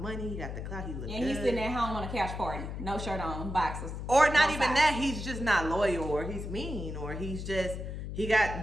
money. He got the clout. He look good. And he's sitting at home on a couch party. No shirt on, boxers. Or not even that. He's just not loyal, or he's mean, or he's just, he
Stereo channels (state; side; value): noise; left; hum, 6 dB below the sound